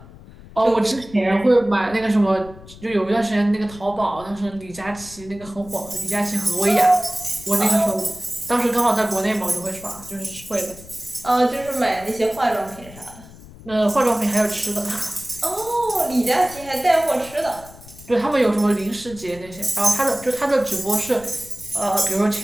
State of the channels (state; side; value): noise; left; rumble, 19 dB below the sound